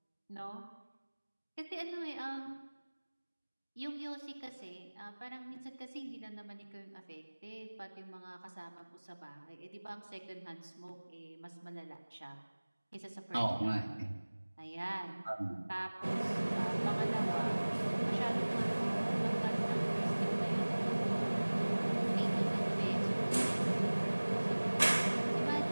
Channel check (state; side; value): inverted; both; correlation -1.00